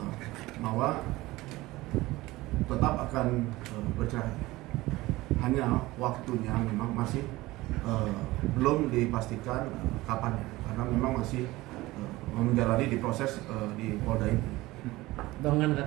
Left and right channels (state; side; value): quieter; left; 19.1 dB